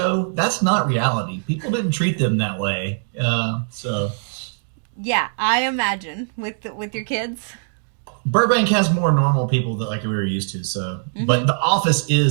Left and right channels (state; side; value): silent; left; digital silence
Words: that's not reality. People didn't treat them that way. So Yeah, I imagine with your kids. Burbank has more normal people that like we were used to. So, Mm-hmm. but the office